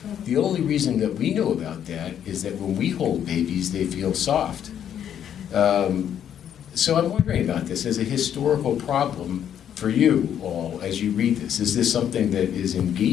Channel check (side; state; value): right; quieter; 9.5 dB